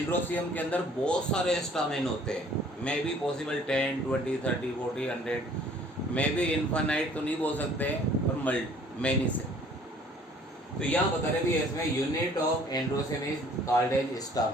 के अंदर बहुत सारे स्टामेन होते हैं, may be possible 10, 20, 30, 40, 100, may be infinite तो नहीं बोल सकते पर मैनी से। तो यहाँ बता रहे भी इसमें unit of androecium is called as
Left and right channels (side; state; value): both; normal; correlation 0.56